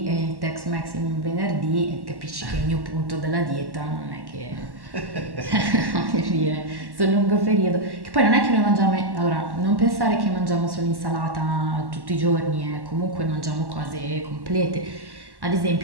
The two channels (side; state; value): left; late; 1.1 ms